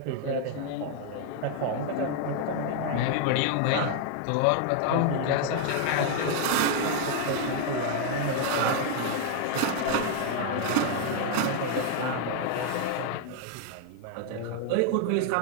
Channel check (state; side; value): different; both; correlation 0.00